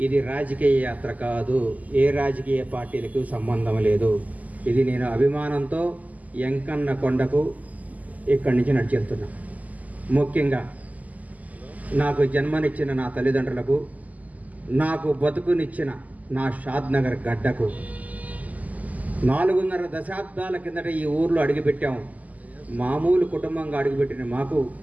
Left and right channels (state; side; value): late; left; 0.077 ms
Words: ఇది రాజకీయ యాత్ర కాదు, ఏ రాజకీయ పార్టీలకు సంబంధం లేదు. ఇది నేను అభిమానంతో ఎంకన్న కొండకు ఇక్కడి నుంచి నడిచెళ్తున్నా. ముఖ్యంగా నాకు జన్మనిచ్చిన నా తల్లిదండ్రులకు, నాకు బతుకునిచ్చిన నా షాద్నగర్ గడ్డకు, 4.5 దశాబ్దాల కిందట ఈ ఊర్లో అడుగుపెట్టాము. మామూలు కుటుంబంగా అడుగుపెట్టిన మాకు